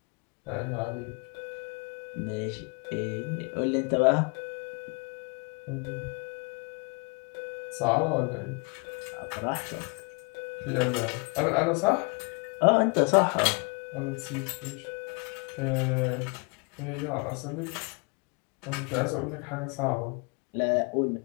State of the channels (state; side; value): quieter; right; 32.9 dB